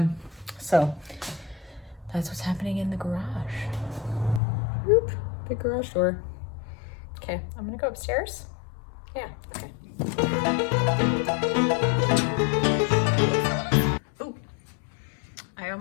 that's what's happening in the garage. Whoop, big garage door. Okay, I'm going to go upstairs. Yeah, okay. Oh, I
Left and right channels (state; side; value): drops out; right; at 4.4 s